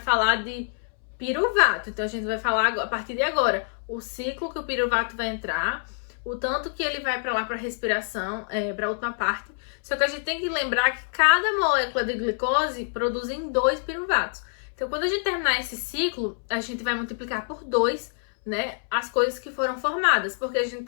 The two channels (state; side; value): silent; right; 61 dB below the other